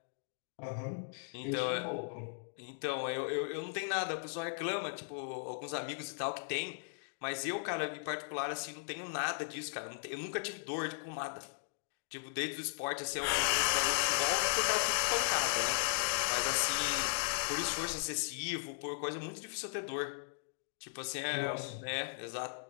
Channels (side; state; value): right; silent; digital silence